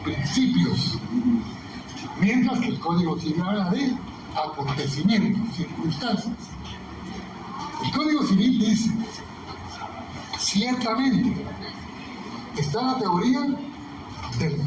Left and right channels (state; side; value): identical; both; correlation 1.00